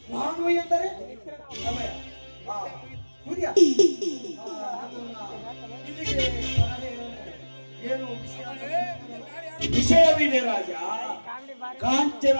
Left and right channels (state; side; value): inverted; both; correlation -1.00